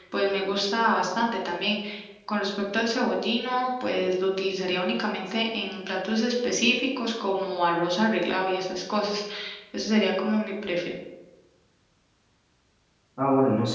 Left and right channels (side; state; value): both; identical; correlation 1.00